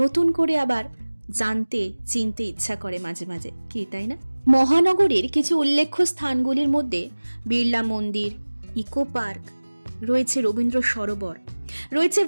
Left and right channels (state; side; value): inverted; both; correlation -1.00